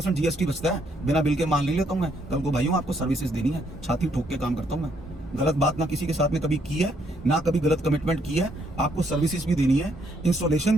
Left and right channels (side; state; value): both; normal; correlation 0.71